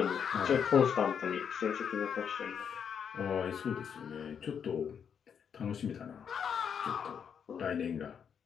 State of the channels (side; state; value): right; quieter; 7.5 dB